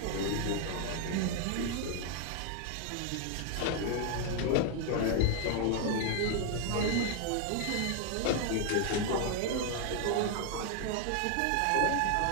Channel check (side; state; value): both; different; correlation 0.00